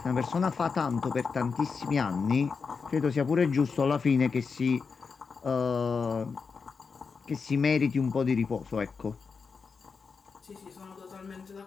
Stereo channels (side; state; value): right; quieter; 5.3 dB